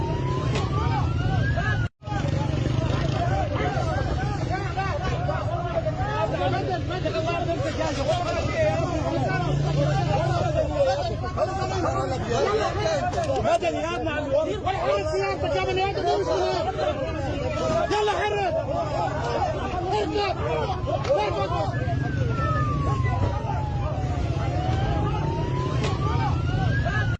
مدني يا ابن عم الوزير ولا حرك سيارتك يا بني ادم. يلا حرك اركب اركب.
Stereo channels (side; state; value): both; identical; correlation 1.00